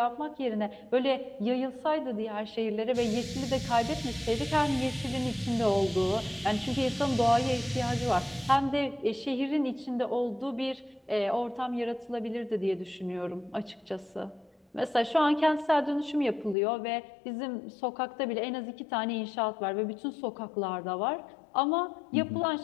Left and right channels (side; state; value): right; drops out; at 16.6 s